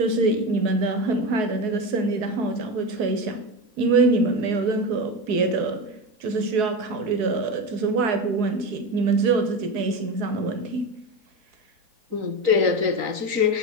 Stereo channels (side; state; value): left; late; 4.7 ms